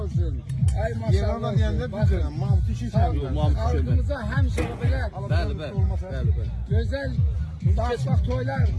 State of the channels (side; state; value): both; identical; correlation 1.00